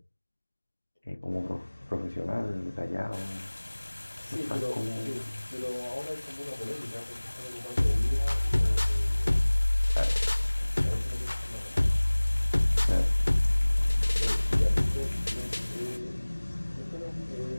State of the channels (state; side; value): inverted; both; correlation -1.00